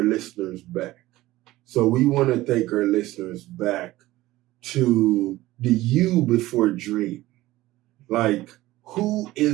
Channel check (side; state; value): left; quieter; 17.2 dB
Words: listeners back. So we want to take our listeners back to the you before Dreeme. Like, who